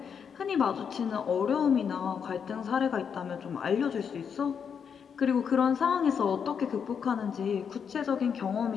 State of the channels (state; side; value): quieter; right; 7.0 dB